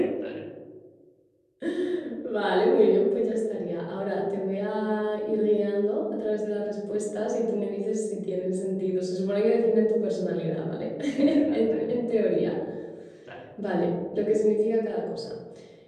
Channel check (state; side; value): identical; both; correlation 1.00